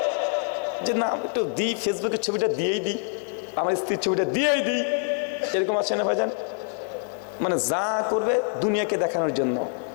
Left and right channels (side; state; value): right; silent; 60 dB below the other